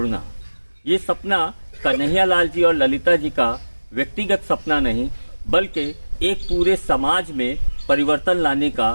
ये सपना कन्हैयालाल जी और ललिता जी का व्यक्तिगत सपना नहीं, बल्कि एक पूरे समाज में परिवर्तन लाने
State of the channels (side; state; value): both; inverted; correlation -1.00